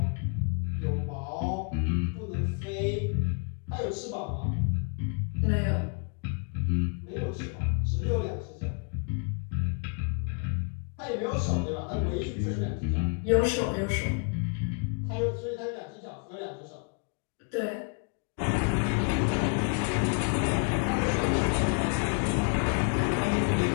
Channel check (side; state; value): right; quieter; 37.4 dB